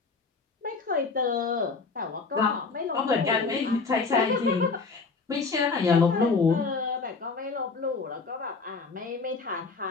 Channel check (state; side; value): quieter; right; 4.4 dB